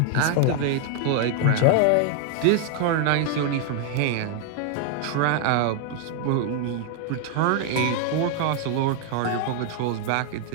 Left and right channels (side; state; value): both; different; correlation 0.00